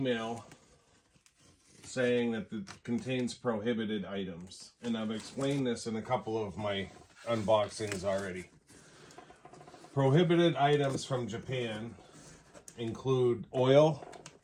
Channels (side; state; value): both; identical; correlation 1.00